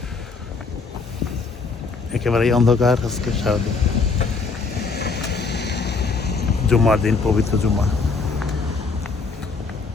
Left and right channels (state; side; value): quieter; right; 4.4 dB